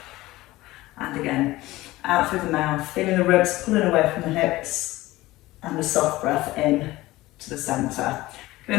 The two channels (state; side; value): quieter; right; 18.1 dB